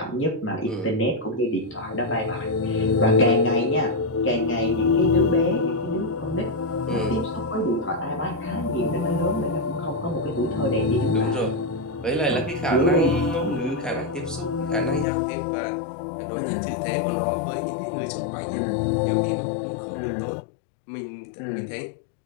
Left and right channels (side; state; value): right; drops out; at 15.1 s